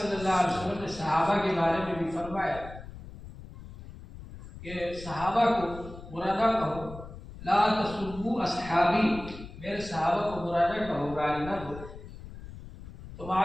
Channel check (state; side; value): noise; left; rumble, 14 dB below the sound